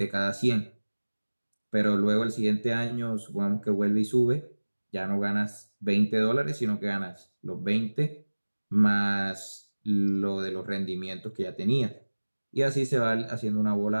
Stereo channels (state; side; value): inverted; both; correlation -1.00